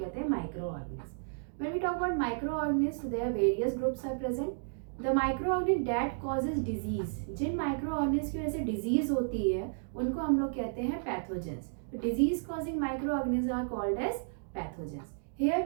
कहते हैं micro organism. When we talk about micro organism there various groups are present. The micro organism that causes disease, जिन माइक्रो ऑर्गेनिज्म की वजह से डिजीज होती है उनको हम लोग कहते हैं pathogens. Disease causing micro organism are called as pathogens. Here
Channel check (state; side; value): silent; left; digital silence